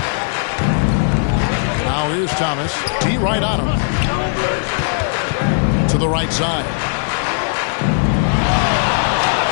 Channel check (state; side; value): silent; right; 68 dB below the other